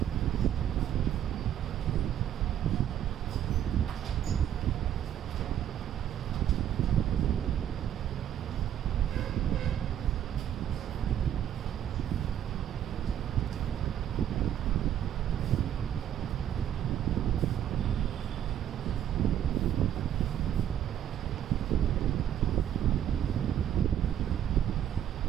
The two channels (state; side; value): quieter; left; 10.4 dB